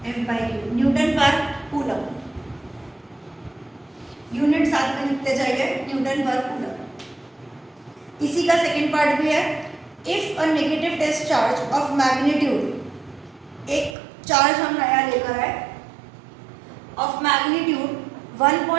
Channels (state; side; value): drops out; left; at 14.0 s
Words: F/Q, newton per coulomb. Unit साथ में लिखते जाइए, न्यूटन पर कूलम. इसी का सेकंड पार्ट भी है. If a negative test charge of magnitude, एक चार्ज हम नया लेकर आए of magnitude